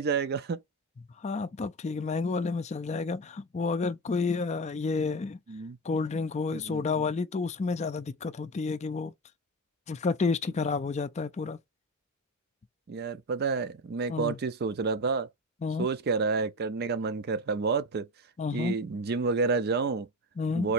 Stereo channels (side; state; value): both; normal; correlation 0.22